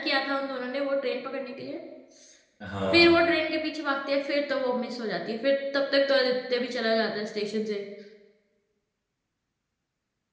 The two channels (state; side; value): identical; both; correlation 1.00